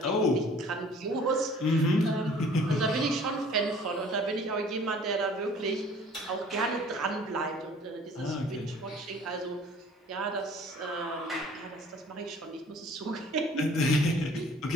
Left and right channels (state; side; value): normal; both; correlation 0.51